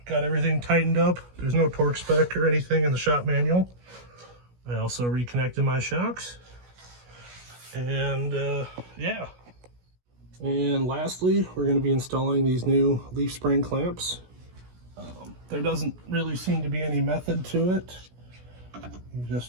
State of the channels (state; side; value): late; left; 16 ms